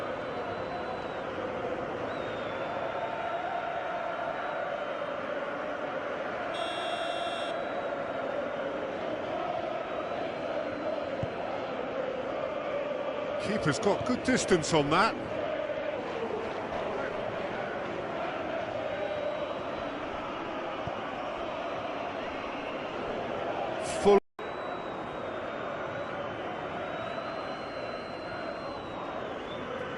Keeper's got good distance on that. Full.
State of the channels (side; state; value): both; identical; correlation 1.00